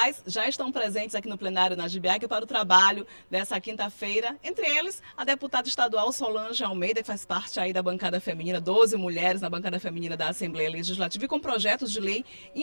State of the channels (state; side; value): inverted; both; correlation -1.00